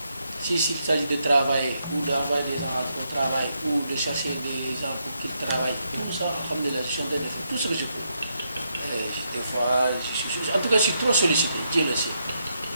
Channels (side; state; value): both; inverted; correlation -0.80